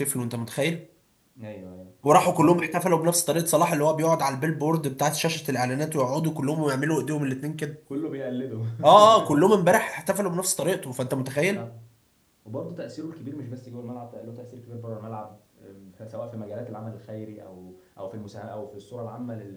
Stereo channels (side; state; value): both; identical; correlation 1.00